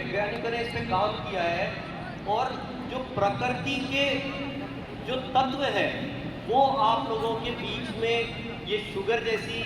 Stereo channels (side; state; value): both; identical; correlation 1.00